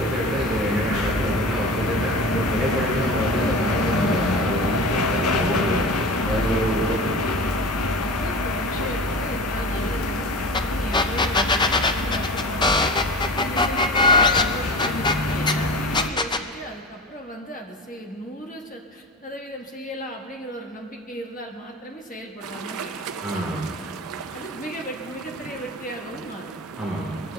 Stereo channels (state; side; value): normal; both; correlation 0.31